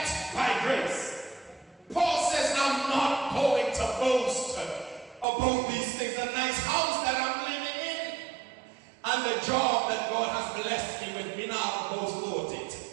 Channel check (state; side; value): drops out; left; at 5.2 s